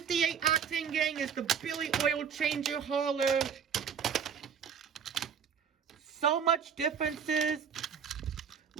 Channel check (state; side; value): quieter; left; 7.3 dB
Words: Octane Gang is the Billy Oil Changer hauler. So much differences.